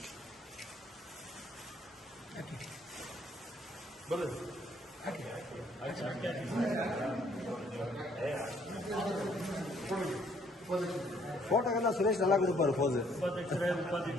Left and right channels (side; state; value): both; normal; correlation 0.64